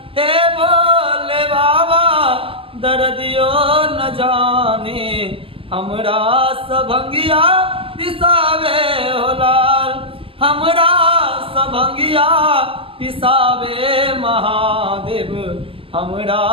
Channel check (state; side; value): late; left; 0.26 ms